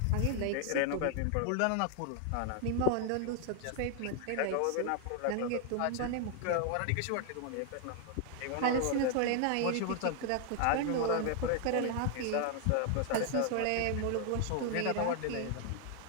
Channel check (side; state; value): both; different; correlation 0.00